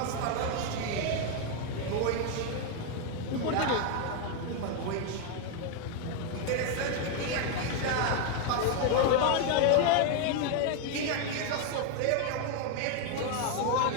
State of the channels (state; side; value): different; both; correlation 0.01